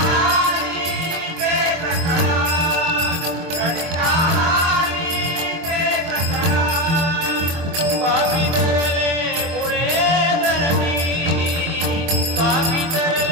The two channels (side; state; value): left; late; 24 ms